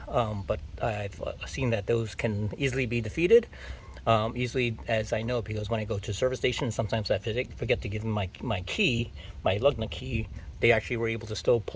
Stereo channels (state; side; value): identical; both; correlation 1.00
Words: but I've seen that those can easily be defeated. Easily, as I know, because when I go to service station, sometimes I forget to give them my key, my lug nut key. They actually were able to still